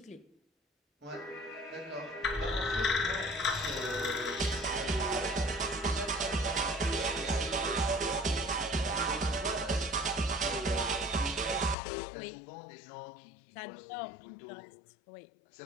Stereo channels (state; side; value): drops out; right; at 11.8 s